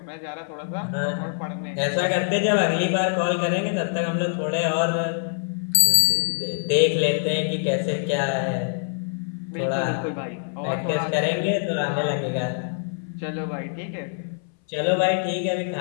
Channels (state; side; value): silent; right; 61 dB below the other